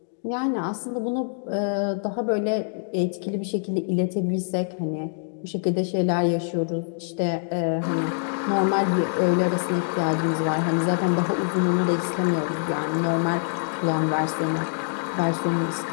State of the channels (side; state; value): right; silent; digital silence